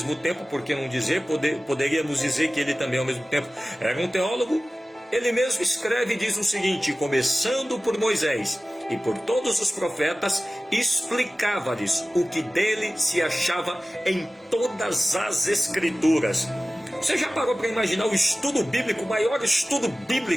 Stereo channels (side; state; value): both; normal; correlation 0.96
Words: tempo, por que não dizer, poderíamos dizer que ele também ao mesmo tempo era um teólogo, ele mesmo escreve e diz o seguinte: começando por Moisés e por todos os profetas, explicava-lhes o que dele se achava em todas as escrituras. Você já parou para imaginar o estudo bíblico, o maior estudo